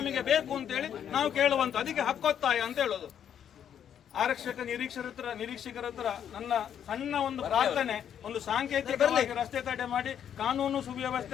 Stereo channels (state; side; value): quieter; right; 9.1 dB